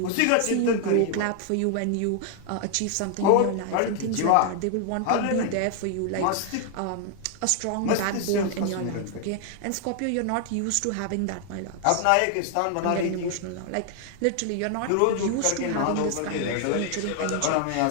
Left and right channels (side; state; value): both; different; correlation 0.00